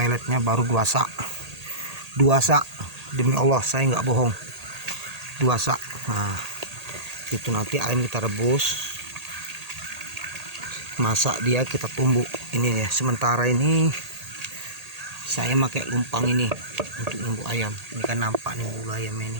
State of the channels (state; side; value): late; left; 1.8 ms